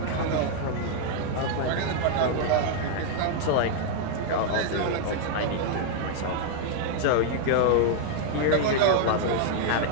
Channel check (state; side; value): different; both; correlation 0.00